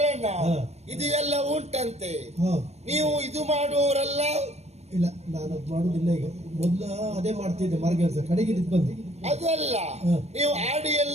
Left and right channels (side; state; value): left; late; 0.31 ms